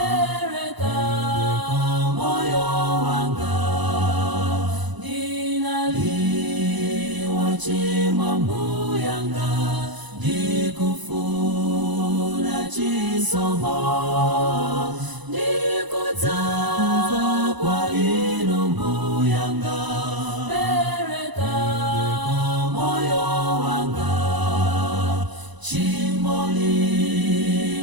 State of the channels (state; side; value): late; left; 1.0 ms